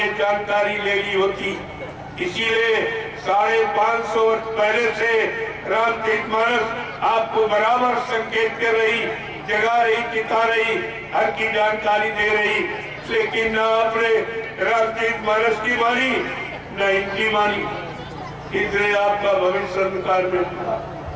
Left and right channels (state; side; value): identical; both; correlation 1.00